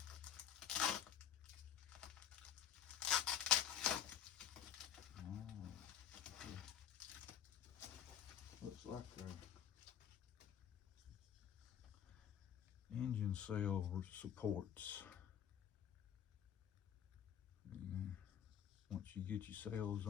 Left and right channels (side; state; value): right; quieter; 9.5 dB